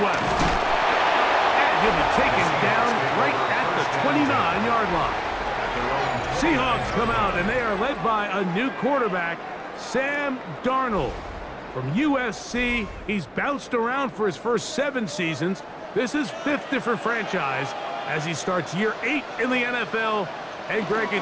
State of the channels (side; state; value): both; identical; correlation 1.00